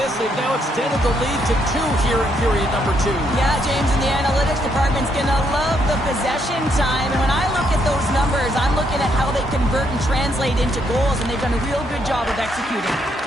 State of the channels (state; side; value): normal; both; correlation 0.74